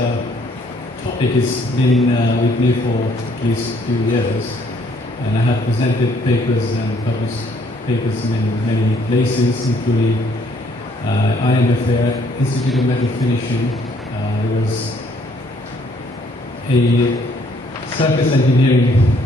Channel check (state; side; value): normal; both; correlation 0.64